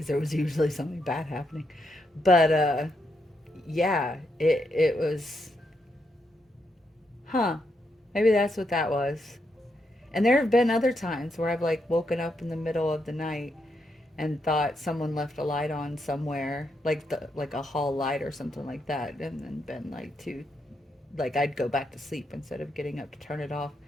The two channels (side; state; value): both; normal; correlation 0.80